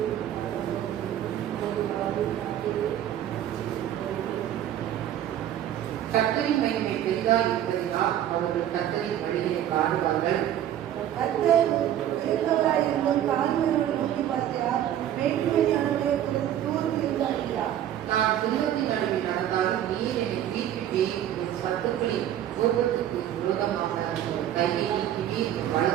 கர்த்தரின் மகிமை பெரிதாக இருப்பதினால் அவர்கள் கர்த்தரின் வழியை பாடுவார்கள். கர்த்தர் பெரியவராயிருந்தும் தாழ்மையோடு நோக்கி பார்க்கிறார். வேற்றுமையானவர்களை தூர்ந்து இருந்தார். நான் துன்பத்தின் நடுவில் நடந்தாலும் நீர் என்னை தீர்ப்பிட்டேன். என் சத்துக்களின் கோபத்துக்கு விரோதமாக கையை நீக்கி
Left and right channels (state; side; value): quieter; left; 11.3 dB